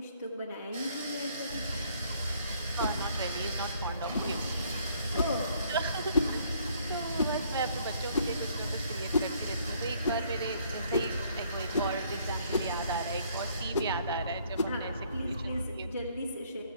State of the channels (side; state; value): both; inverted; correlation -0.64